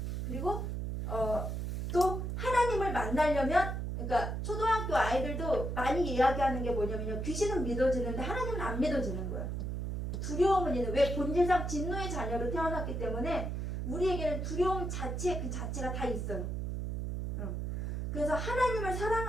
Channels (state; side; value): noise; right; hum, 3 dB below the sound